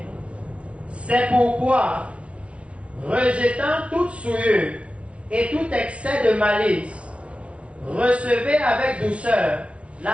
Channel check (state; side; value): late; left; 0.061 ms